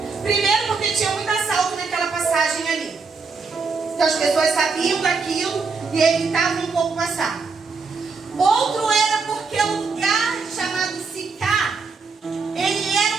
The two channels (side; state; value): left; quieter; 4.7 dB